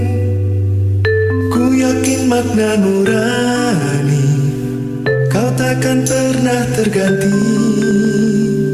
Ku yakin makna nurani, kau takkan pernah terganti.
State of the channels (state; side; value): identical; both; correlation 1.00